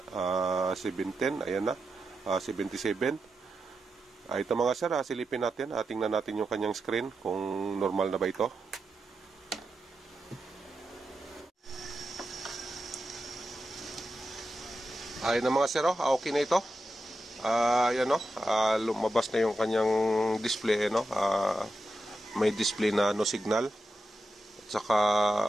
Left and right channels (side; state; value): both; normal; correlation 0.89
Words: ayan na, 77. Ito mga sir, silipin natin, tingnan natin yung kanyang screen kung normal na ba ito. Ayan na mga sir, okay na ito. Ayan o, lumabas na yung kanyang display, may display na no signal. At saka